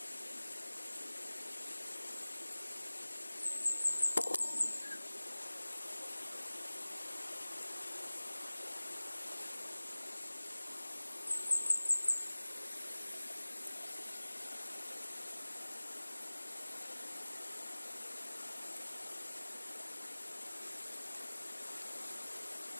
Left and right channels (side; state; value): both; inverted; correlation -1.00